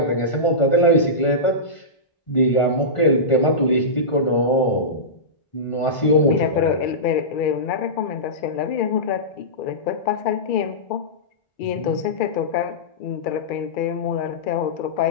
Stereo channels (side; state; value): right; late; 1.5 ms